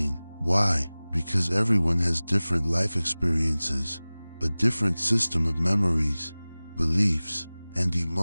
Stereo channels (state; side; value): inverted; both; correlation -0.99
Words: Why? Because everyone has different life experiences, a different system of memories, beliefs, and